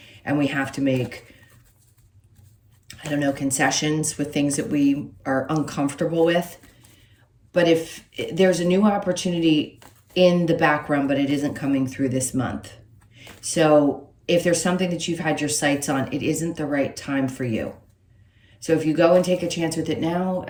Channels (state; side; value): identical; both; correlation 1.00